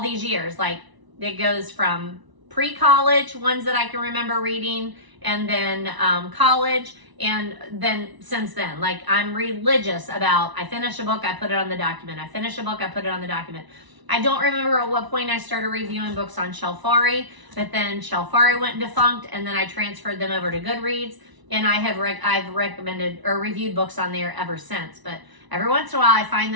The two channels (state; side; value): late; left; 1.0 ms